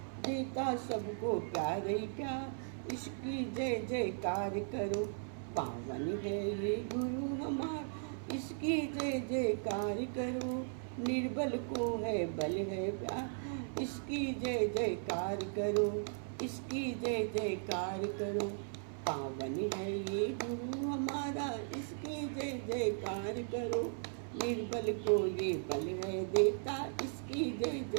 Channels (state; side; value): silent; left; 53 dB below the other